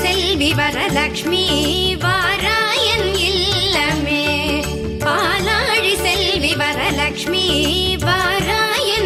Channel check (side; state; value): both; identical; correlation 1.00